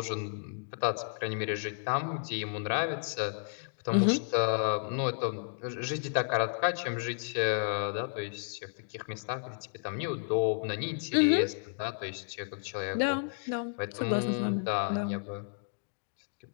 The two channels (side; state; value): right; silent; digital silence